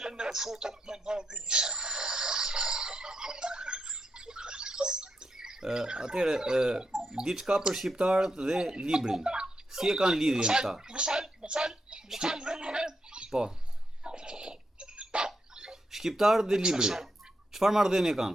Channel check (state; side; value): normal; both; correlation 0.83